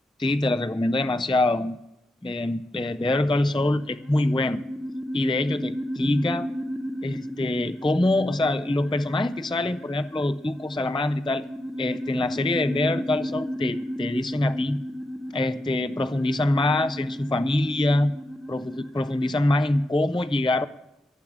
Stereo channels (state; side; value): normal; both; correlation 0.85